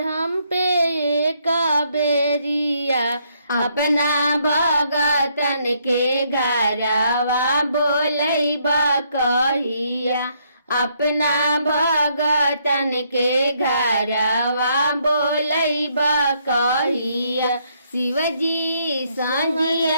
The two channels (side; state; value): both; inverted; correlation -0.72